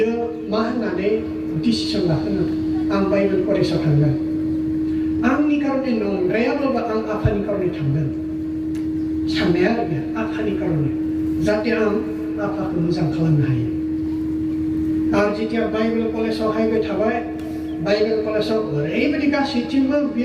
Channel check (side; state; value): both; identical; correlation 1.00